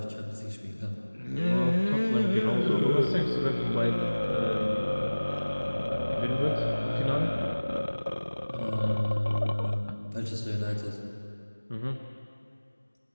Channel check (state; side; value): inverted; both; correlation -1.00